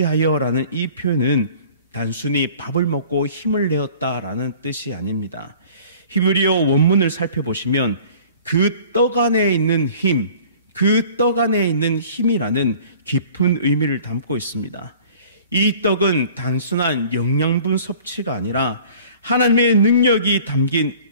이 표현은 단순히 밥을 먹고 힘을 내었다라는 뜻이 아닙니다. 히브리어 원문을 살펴보시면 그 떡 안에 있는 힘, 그 떡 안에 있는 힘이라는 깊은 의미를 담고 있습니다. 이 떡은 단순한 영양분 섭취가 아니라 하나님의 능력이 담긴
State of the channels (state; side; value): inverted; both; correlation -0.49